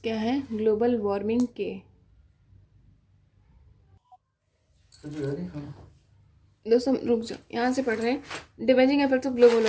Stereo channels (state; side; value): identical; both; correlation 1.00